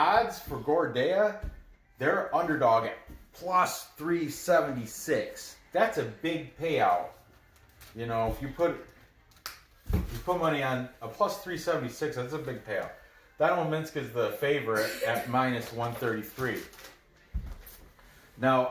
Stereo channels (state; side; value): identical; both; correlation 1.00